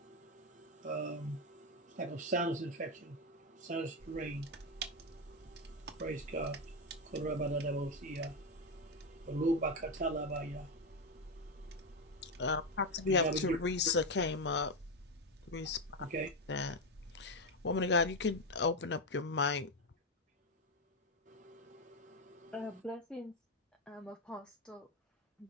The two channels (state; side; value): normal; both; correlation 0.08